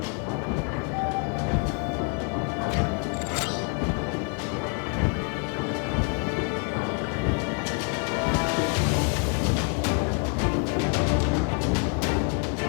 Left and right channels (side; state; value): right; quieter; 37.9 dB